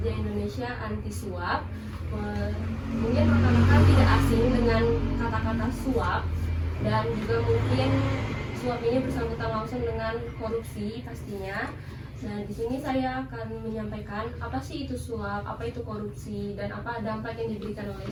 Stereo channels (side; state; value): both; identical; correlation 1.00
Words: Indonesia anti suap. Mungkin rekan-rekan tidak asing dengan kata-kata suap, dan juga mungkin suap ini bersangkutan langsung dengan korupsi pastinya. Nah, di sini saya akan menyampaikan apa sih itu suap, apa itu korupsi, dan apa dampak yang diberikan oleh